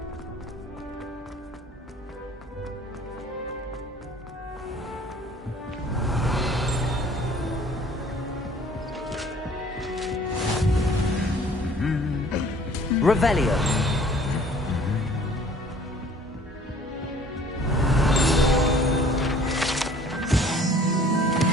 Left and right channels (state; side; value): normal; both; correlation 0.53